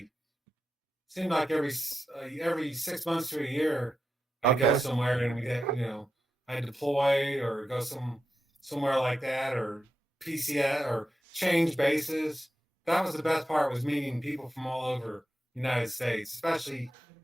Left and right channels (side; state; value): both; normal; correlation 0.89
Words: seemed like every 6 months to a year I'd go Okay. somewhere and we get I'd deploy or go somewhere like that or PCS or change bases. That was the best part, was meeting people from all over the United States, especially